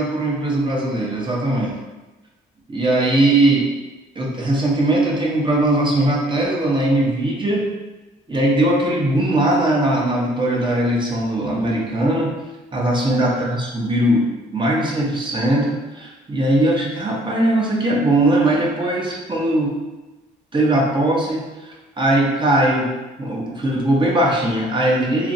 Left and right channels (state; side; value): normal; both; correlation 0.60